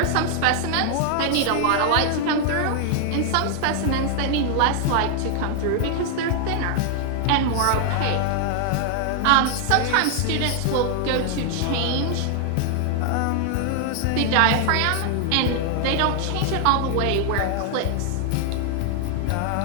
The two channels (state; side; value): different; both; correlation 0.00